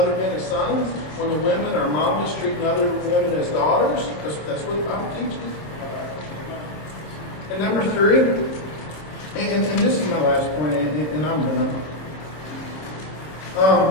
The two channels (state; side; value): late; right; 26 ms